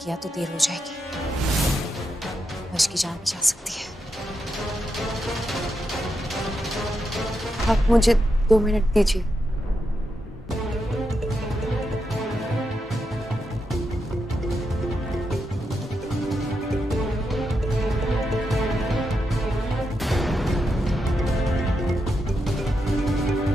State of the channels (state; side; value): normal; both; correlation 0.84